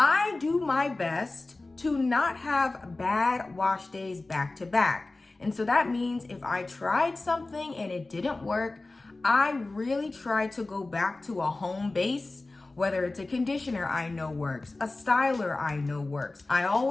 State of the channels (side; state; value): right; quieter; 3.2 dB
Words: do my best to not have bad wash days back to back. And so that means if I tried something and it didn't work, I really try to go back to a home base, whether it's a conditioner I know works, a styler I know works. I